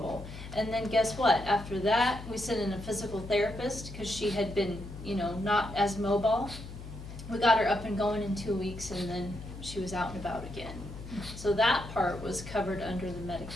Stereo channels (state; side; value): noise; left; hum, 11 dB below the sound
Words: And then guess what? After that, we sent in a physical therapist because she had been, not as mobile. We got her up and going in 2 weeks, and then she was out and about again. So that part was covered under the